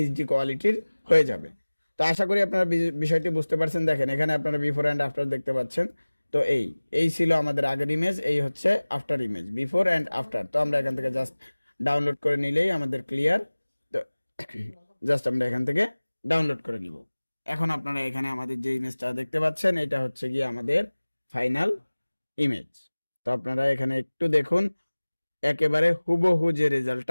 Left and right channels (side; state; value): both; inverted; correlation -1.00